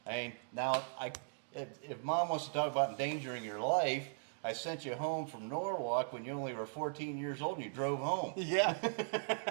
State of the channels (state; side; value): silent; left; digital silence